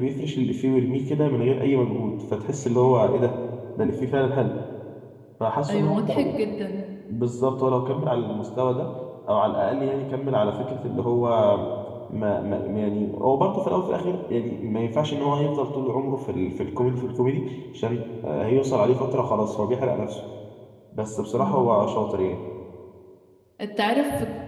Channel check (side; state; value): both; identical; correlation 1.00